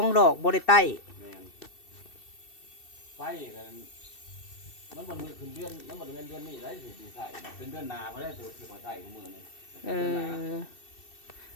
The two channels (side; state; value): right; late; 2.7 ms